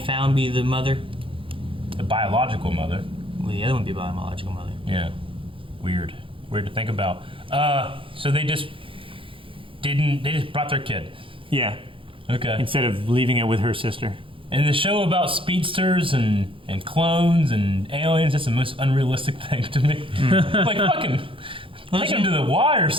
be the mother? The biological mother. Would the other one be biological mother? Yeah. Weird. Weird to think about. So they just didn't. They just brought their kid. Yeah. Okay. Instead of leaving it with her sister. And the show about speedsters and clones and aliens, that's the most unrealistic thing to me. Like, fucking take him to the Y or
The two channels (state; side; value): late; left; 0.25 ms